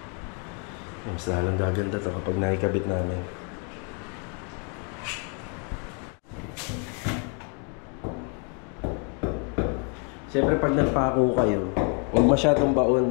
Mas lalong gaganda to kapag nakikabit namin. Siyempre pag nagpako kayo, huwag masyadong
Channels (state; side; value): quieter; right; 38.4 dB